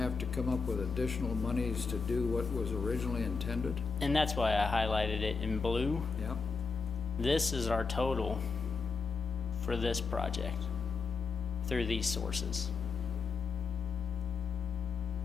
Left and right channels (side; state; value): right; quieter; 5.0 dB